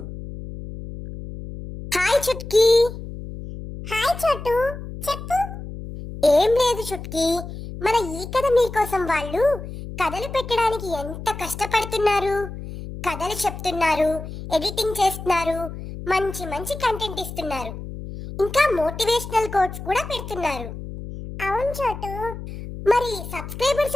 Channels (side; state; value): left; noise; hum, 10 dB below the sound